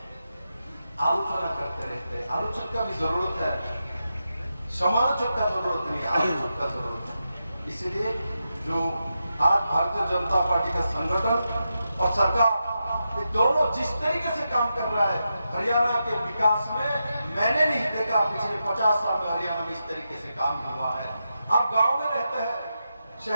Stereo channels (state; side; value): inverted; both; correlation -0.88